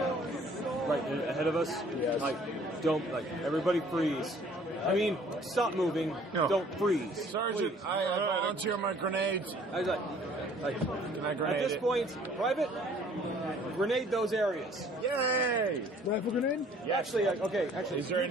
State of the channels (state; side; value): normal; both; correlation 0.56